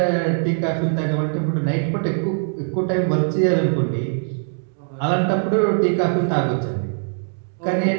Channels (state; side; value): silent; left; 65 dB below the other